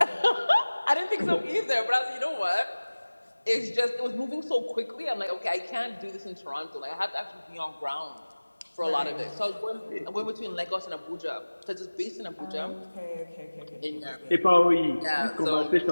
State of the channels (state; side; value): inverted; both; correlation -1.00